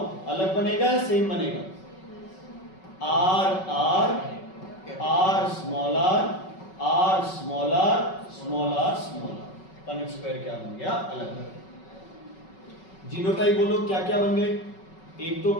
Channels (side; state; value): right; late; 5.3 ms